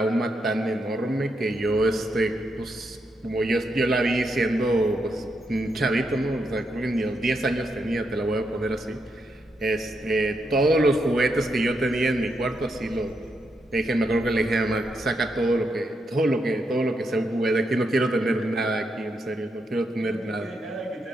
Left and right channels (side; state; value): both; normal; correlation 0.81